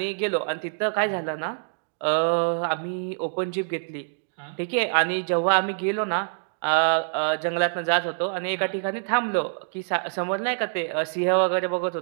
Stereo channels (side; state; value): left; silent; digital silence